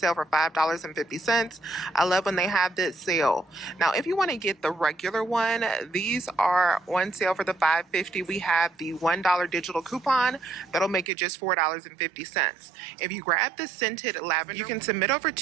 for $5.50. I love when they have this sale. Now, if you want to get the regular one, these are on sale for the $5.50. We have the $1 digital coupon. That'll make it just $4.50. If you grab the scented lavender, you can submit over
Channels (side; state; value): left; drops out; at 11.1 s